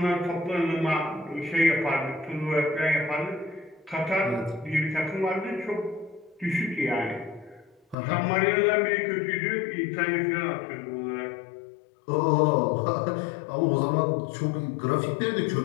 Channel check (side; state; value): right; drops out; at 8.0 s